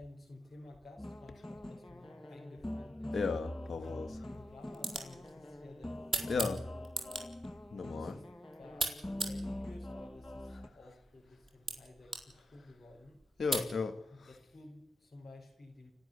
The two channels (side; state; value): both; normal; correlation 0.86